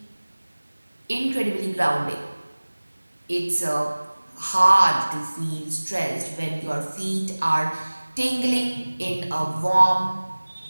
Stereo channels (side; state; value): both; inverted; correlation -1.00